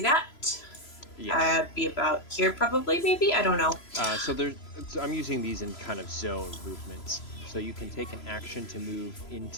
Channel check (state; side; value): late; right; 3.0 ms